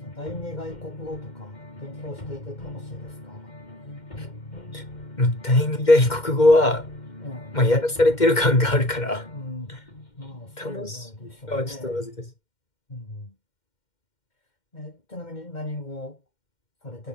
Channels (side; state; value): right; late; 2.1 ms